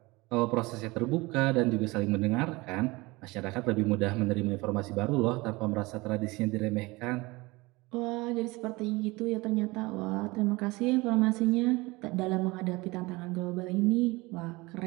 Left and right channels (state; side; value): quieter; left; 22.8 dB